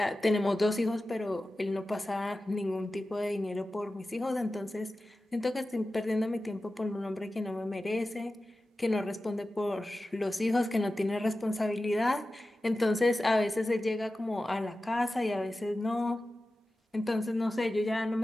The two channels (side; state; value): both; normal; correlation 0.94